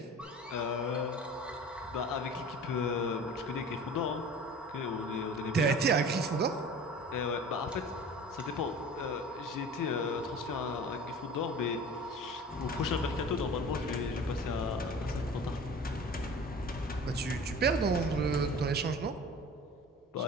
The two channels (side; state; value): both; normal; correlation 0.40